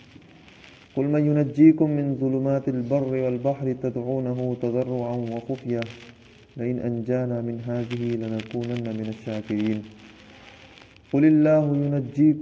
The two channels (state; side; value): identical; both; correlation 1.00